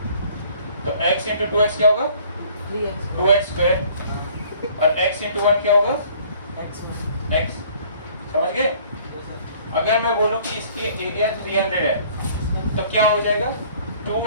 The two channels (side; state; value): both; inverted; correlation -0.55